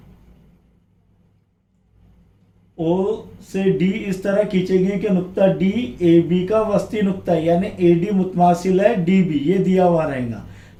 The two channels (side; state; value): both; identical; correlation 1.00